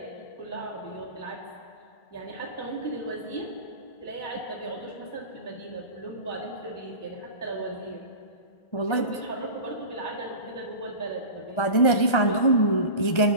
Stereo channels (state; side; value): late; right; 1.3 ms